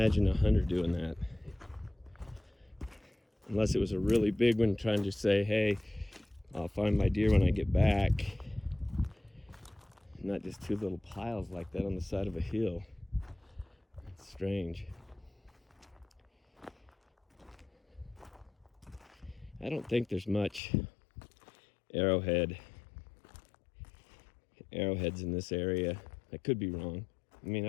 a hunter doing that. Unless it was a really big one trying to say, hey, I'll find my deer when I get back. Not just 2 little piles like that on the side of a hill. It's strange. I don't think there's much arrowhead arrowheads in this area. I could be wrong. I mean,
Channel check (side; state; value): right; drops out; at 20.6 s